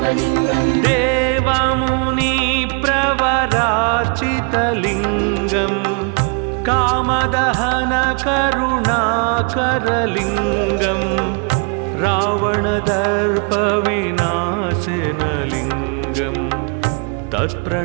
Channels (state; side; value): quieter; left; 37.0 dB